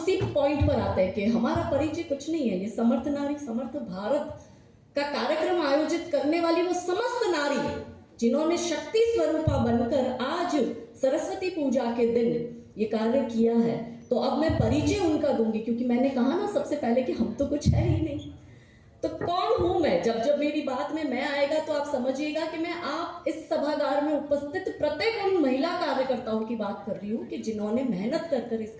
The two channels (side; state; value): both; identical; correlation 1.00